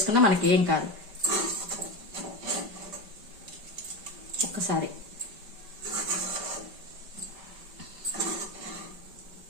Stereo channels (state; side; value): late; left; 5.2 ms